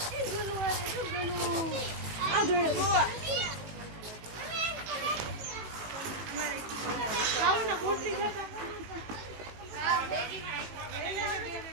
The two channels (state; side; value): late; left; 18 ms